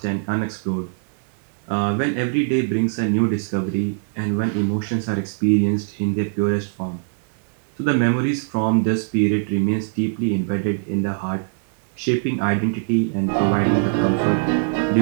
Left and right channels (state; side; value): silent; left; 64 dB below the other